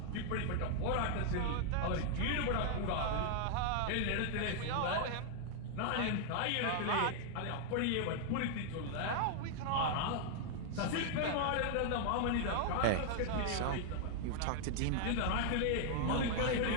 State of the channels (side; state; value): both; different; correlation 0.00